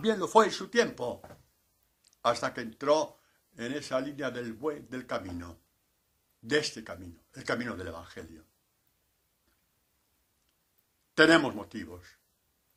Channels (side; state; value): both; identical; correlation 1.00